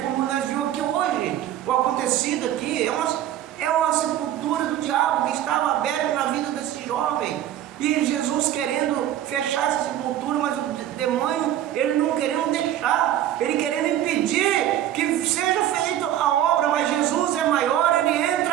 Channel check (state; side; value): quieter; left; 11.8 dB